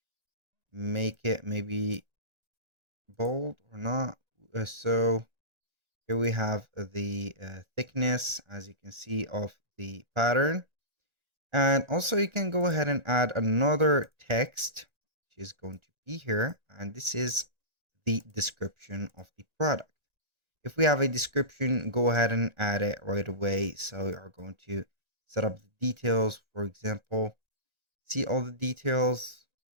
make it maybe bold or not. So here we have the thickness, as you can see, of the pattern. And also you can go ahead and add another text, which is going to be here. And this is the description of the product. If we have a description, go ahead and add it right away. So we are going to set up the details. For example, see all the details.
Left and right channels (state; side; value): late; left; 1.9 ms